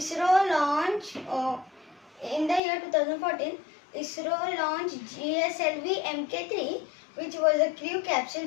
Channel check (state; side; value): drops out; right; at 2.6 s